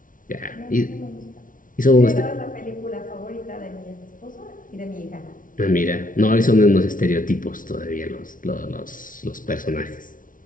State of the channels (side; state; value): right; late; 0.39 ms